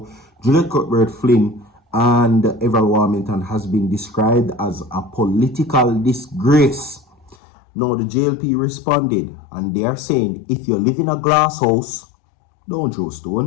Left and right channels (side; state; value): right; drops out; at 7.4 s